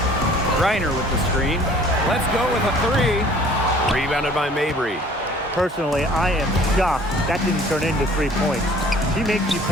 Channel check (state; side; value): normal; both; correlation 0.52